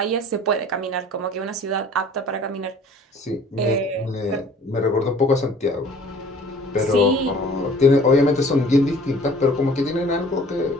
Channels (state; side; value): normal; both; correlation 0.50